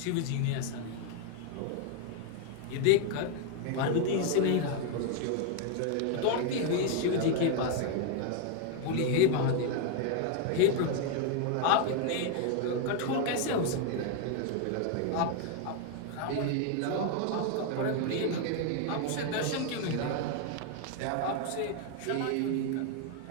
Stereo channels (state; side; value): different; both; correlation 0.01